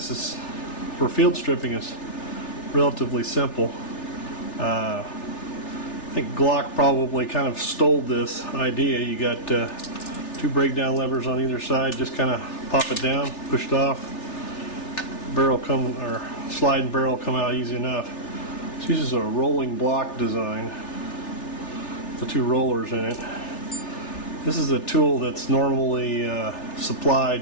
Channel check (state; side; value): late; right; 3.4 ms